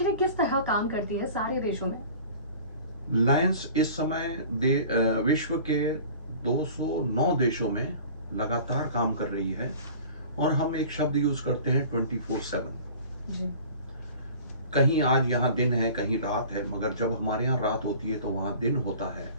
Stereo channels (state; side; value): inverted; both; correlation -0.44